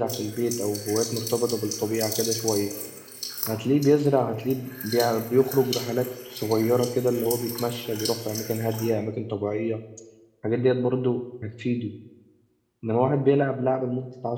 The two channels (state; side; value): identical; both; correlation 1.00